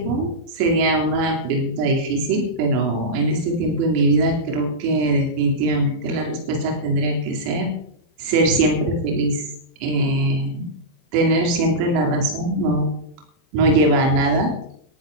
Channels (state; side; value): late; left; 24 ms